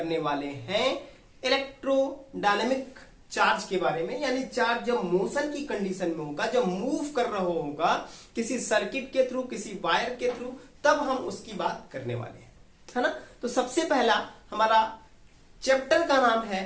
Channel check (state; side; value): identical; both; correlation 1.00